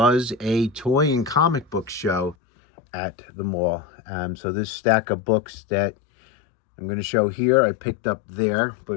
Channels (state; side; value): drops out; right; at 2.4 s